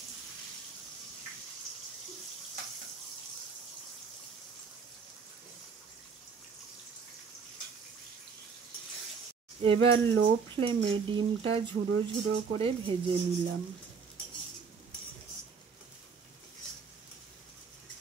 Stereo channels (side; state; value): left; quieter; 5.6 dB